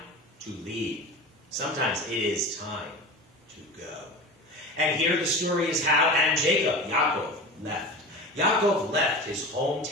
to leave. Sometimes it is time to go. And here the story is how and Jacob, Yaakov, left. Yaakov left his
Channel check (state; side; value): normal; both; correlation 0.31